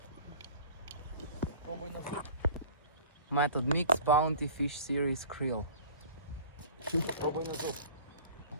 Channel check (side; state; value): both; inverted; correlation -0.44